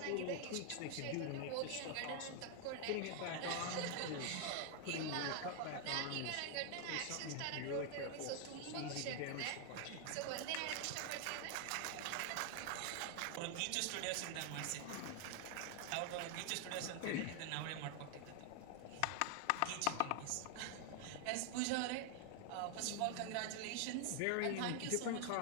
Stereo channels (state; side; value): different; both; correlation 0.00